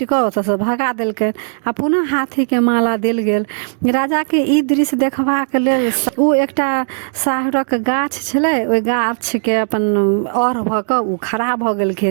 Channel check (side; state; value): left; silent; digital silence